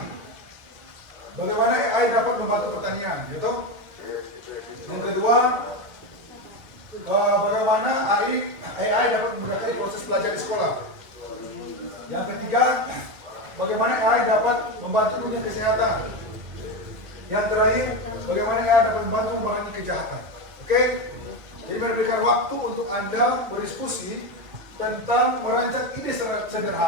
bagaimana AI dapat membantu pertanian, gitu. Yang kedua, bagaimana AI dapat memudahkan proses belajar di sekolah. Yang ketiga, bagaimana AI dapat membantu dunia kesehatan. Yang terakhir, bagaimana AI dapat membantu mengurangi kejahatan. Oke? Jadi memberikan waktu untuk Anda berdiskusi tentang merancang ide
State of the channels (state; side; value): late; left; 2.0 ms